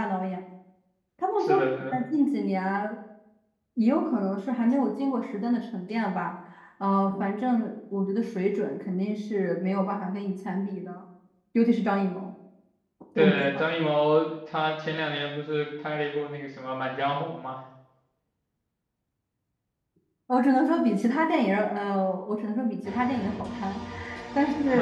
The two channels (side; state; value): both; identical; correlation 1.00